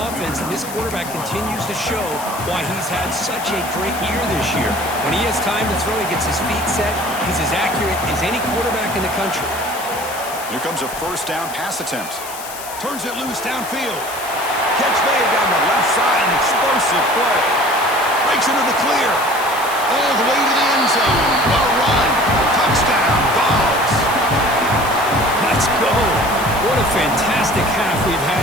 and this quarterback continues to show why he's had such a great year this year. When he has time to throw, he gets his feet set. He's as accurate as any quarterback in the country. Here comes a first down pass attempt. Turns it loose downfield. Catch made down the left side. An explosive play. Breaks into the clear. All the way to the end zone. Well run. Touchdown. Vols. Let's go. What a fantastic half we've had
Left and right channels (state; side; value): noise; left; hiss, 12 dB below the sound